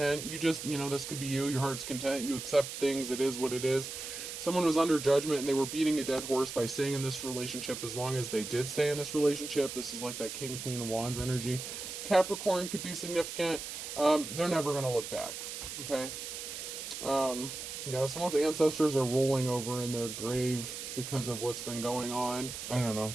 You just, this could be you. Your heart's content. You accept things. It is what it is. Someone was under judgment and they were beating a dead horse by staying in this relationship as long as they did stay in this relationship. This is like that King, Queen of Wands energy. Capricorn could be significant. They're never going to look back. Okay? Someone's ancestors are rolling over in their grave because of what's been going on. I don't know.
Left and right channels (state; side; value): noise; right; hiss, 7 dB below the sound